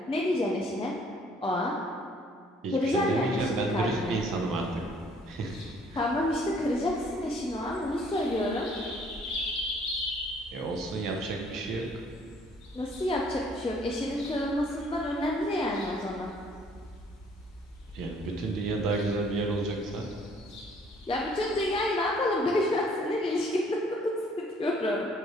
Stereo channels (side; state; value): both; normal; correlation 0.60